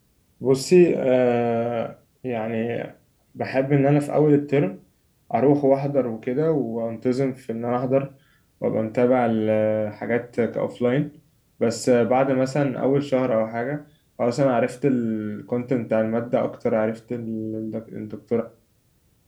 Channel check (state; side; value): identical; both; correlation 1.00